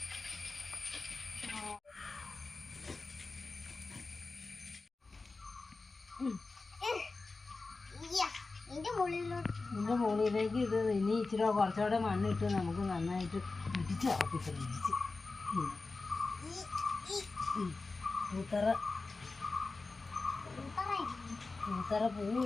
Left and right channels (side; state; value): right; quieter; 3.8 dB